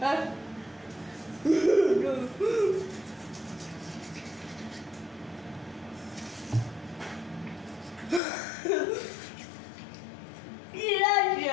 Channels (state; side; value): drops out; right; at 8.2 s